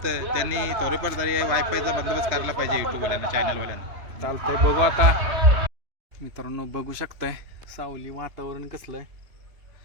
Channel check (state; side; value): late; left; 3.0 ms